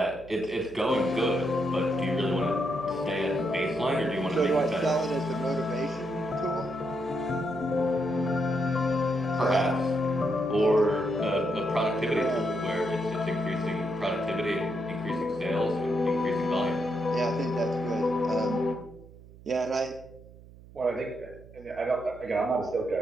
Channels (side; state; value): right; noise; hum, 20 dB below the sound